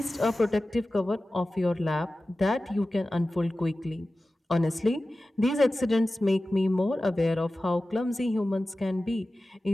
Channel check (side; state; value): both; normal; correlation 0.95